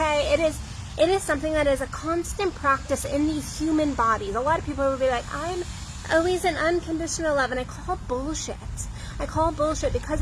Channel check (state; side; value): identical; both; correlation 1.00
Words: It is something that is a constant practice in these human bodies. A lot of people will be like, I'm always in unconditional love, and I call bullshit. Because